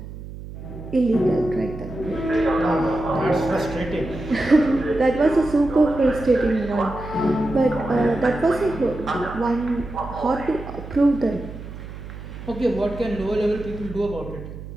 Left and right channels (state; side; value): noise; right; hum, 12 dB below the sound